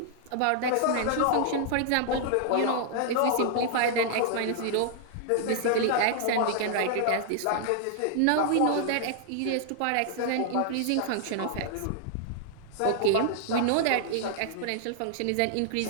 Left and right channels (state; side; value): different; both; correlation -0.01